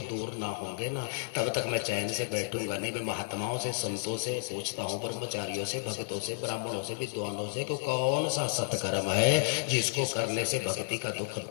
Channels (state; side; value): silent; right; digital silence